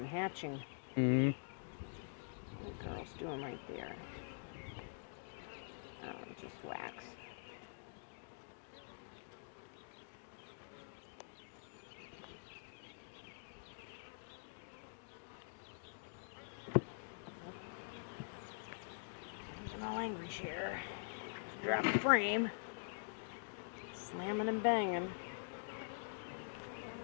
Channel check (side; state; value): right; silent; digital silence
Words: hatching. Mm-hmm. What the girl's doing right there? Oh, just wax. Using my language here. Drop the frame. Slamming and banging.